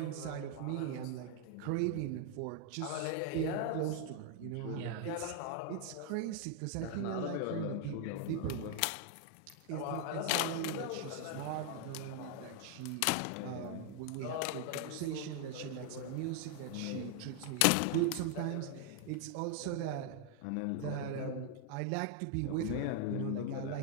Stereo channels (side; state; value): both; different; correlation 0.00